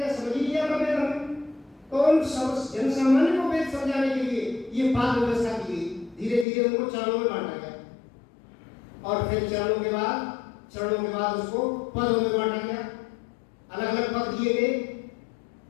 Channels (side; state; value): right; drops out; at 6.5 s